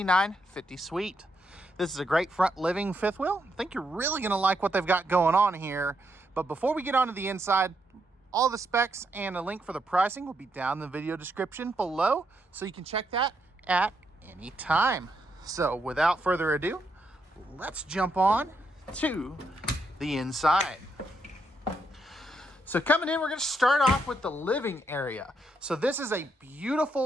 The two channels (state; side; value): normal; both; correlation 0.79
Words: Suite. This is a great front living fifth wheel. I think you're really going to like what they've got going on here. But before we get on to the inside, all the specs and a link for the pricing will be down in the video description below, so you can check that at any time. So without further ado, let's jump on to the inside. So coming in, we're going to start off with the living area. So this is a